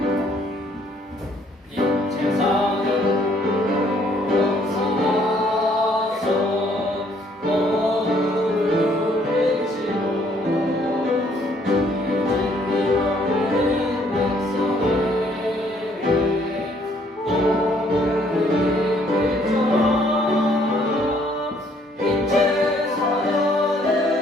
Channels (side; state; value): both; normal; correlation 0.65